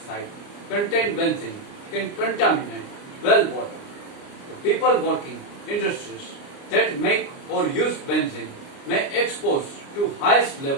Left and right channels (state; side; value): late; right; 29 ms